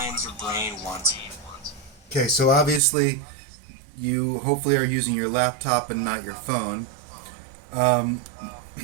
your brain wants. Okay, so obviously you hopefully are using your laptop and not your phone. Um,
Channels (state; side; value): drops out; left; at 2.8 s